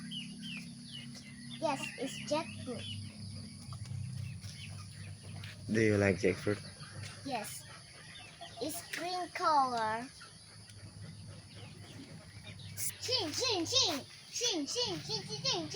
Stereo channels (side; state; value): both; identical; correlation 1.00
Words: Yes, it's jackfruit. Do you like jackfruit? Yes. It's green color. Ching, ching, ching. Ching, ching, ching, ching,